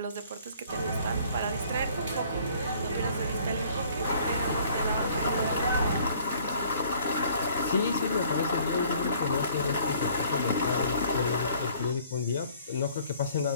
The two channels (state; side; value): inverted; both; correlation -0.57